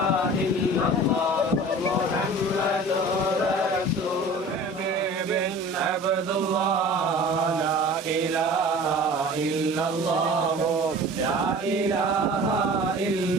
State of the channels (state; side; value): normal; both; correlation 0.41